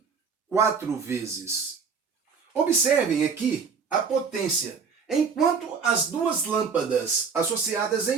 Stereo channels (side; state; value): left; quieter; 5.7 dB